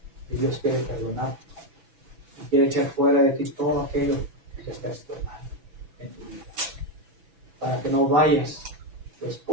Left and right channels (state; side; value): late; left; 6.0 ms